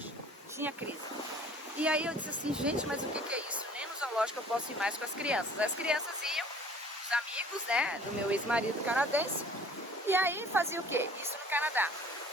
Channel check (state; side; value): normal; both; correlation 0.51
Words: tinha crise. E aí eu disse assim, gente, mas o que é isso? Nem no zoológico eu posso ir mais com as crianças. As crianças iam, os amigos, né, do meu ex-marido canadense. E aí fazia o quê? Isso no Canadá.